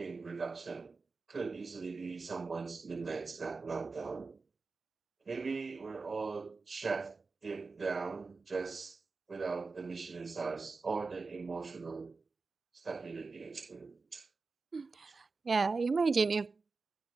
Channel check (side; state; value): left; quieter; 4.2 dB